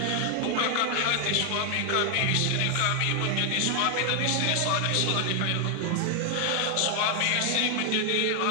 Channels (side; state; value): both; different; correlation 0.00